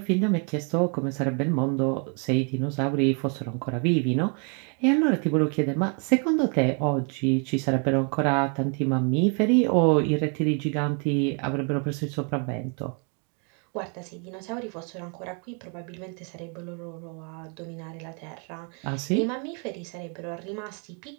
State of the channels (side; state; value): left; quieter; 38.3 dB